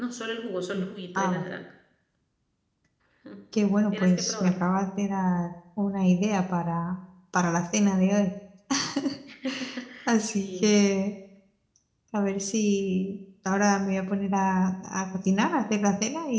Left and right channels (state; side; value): identical; both; correlation 1.00